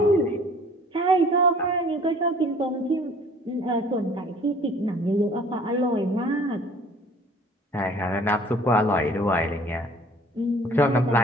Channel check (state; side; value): normal; both; correlation 0.52